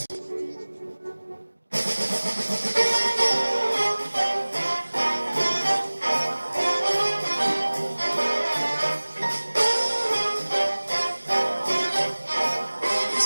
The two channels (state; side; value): inverted; both; correlation -1.00